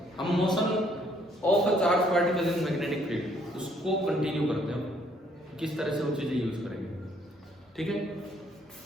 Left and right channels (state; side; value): normal; both; correlation 0.66